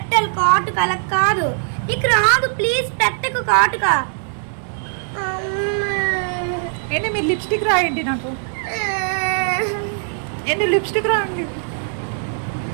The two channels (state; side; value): silent; left; digital silence